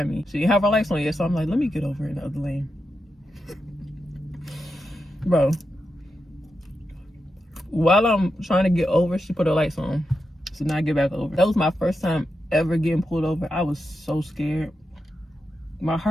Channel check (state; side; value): normal; both; correlation 0.88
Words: me. She didn't have her lights on yet, so I'm like, let me get over in the other lane. Bro, while I'm trying to get over, she put her lights on. So now I get back over. That was my first time ever getting pulled over. I was so scared. My